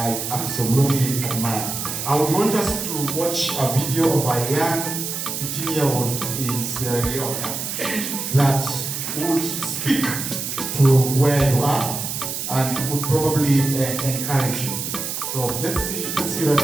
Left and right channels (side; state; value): right; noise; hiss, 4 dB below the sound